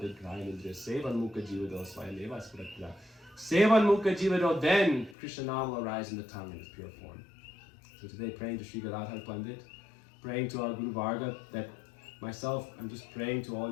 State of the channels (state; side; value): drops out; right; at 5.2 s